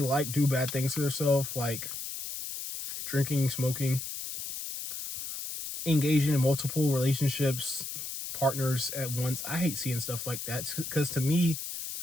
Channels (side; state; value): left; noise; hiss, 7 dB below the sound